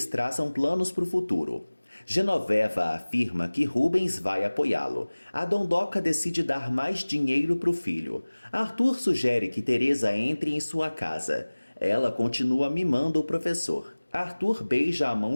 traçam planos para o futuro. Genoveva afirma que Rubens vai apoiá-lo. A Dondoca decide dar mais dinheiro para o filho. Arthur sugere que Teresa entre em sua casa. Ela continua mimando o professor. Arthur beija a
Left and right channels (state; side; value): inverted; both; correlation -1.00